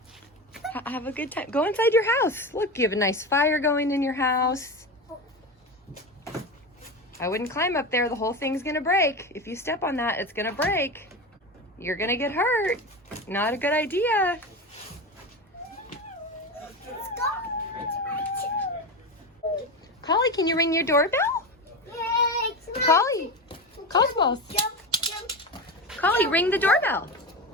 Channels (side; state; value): both; normal; correlation 0.22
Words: Have a good time. Go inside your house. Look, you have a nice fire going in your house. I wouldn't climb up there. The whole thing's gonna break. If you step on that, it's gonna break. You're gonna get hurt. Not a good idea. Let's go. Collie, can you ring your doorbell? Yay, it's my- Collie, Cosmos. Jump, jump. Collie, ring the doorbell.